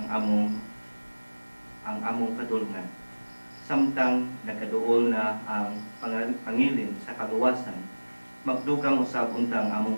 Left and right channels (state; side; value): inverted; both; correlation -1.00